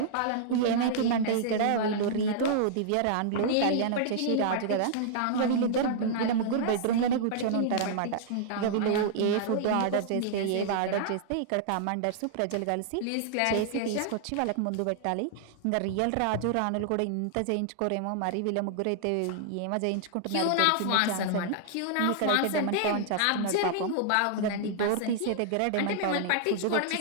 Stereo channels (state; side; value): different; both; correlation -0.01